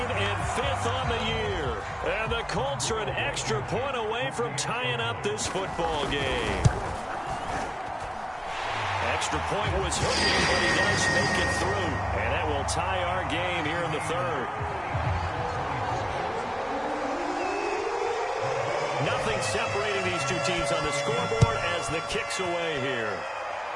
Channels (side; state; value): both; identical; correlation 1.00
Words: and 5th on the year. And the Colts are an extra point away from tying up this football game. Extra point was hooking, but he does make it through. And that will tie our game here in the 3rd. Nothing separating these two teams on the scoreboard as the kick's away here.